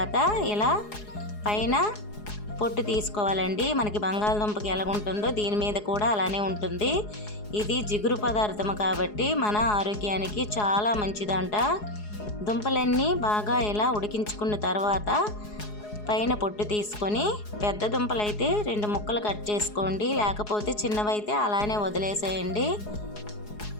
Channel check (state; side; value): late; right; 4.8 ms